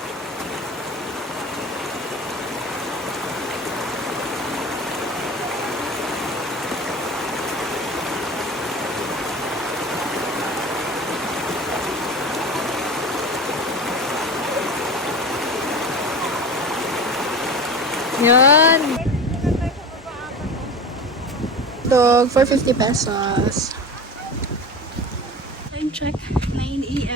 Yan. Dog for 50 pesos. Time check, 9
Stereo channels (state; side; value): normal; both; correlation 0.32